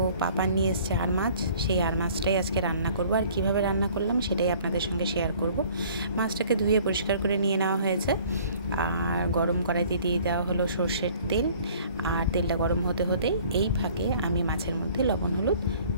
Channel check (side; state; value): both; inverted; correlation -0.53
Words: পাপা নিয়ে এসছে আর মাছ, সেই আর মাছটাই আজকে রান্না করব। আর কিভাবে রান্না করলাম সেটাই আপনাদের সঙ্গে শেয়ার করব। মাছটাকে ধুয়ে পরিষ্কার করে নিয়ে নেওয়া হয়েছে, আর গরম কড়াইতে দিয়ে দেওয়া হলো সর্ষের তেল। আর তেলটা গরম হতে হতেই এই ফাঁকে আমি মাছের মধ্যে লবণ হলুদ